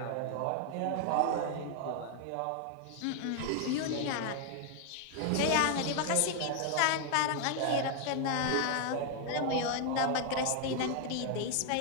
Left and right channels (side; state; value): both; different; correlation 0.00